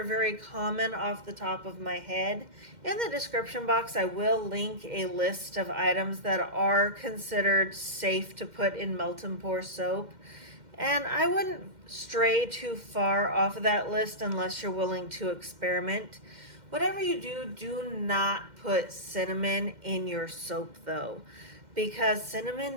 very common off the top of my head. In the description box, I will link a list of items that are considered safe to put in melt and pour soap. And I wouldn't stray too far off of that list unless you're willing to experiment. Whatever you do, do not put cinnamon in your soap though, because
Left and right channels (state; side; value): late; left; 2.1 ms